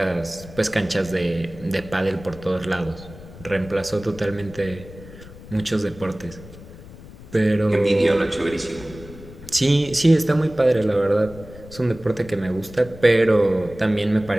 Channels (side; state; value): left; noise; rumble, 17 dB below the sound